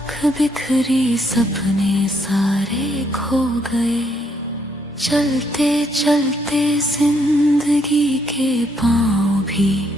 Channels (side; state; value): both; normal; correlation 0.73